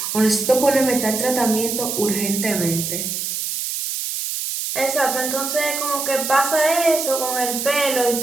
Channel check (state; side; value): noise; right; hiss, 3 dB below the sound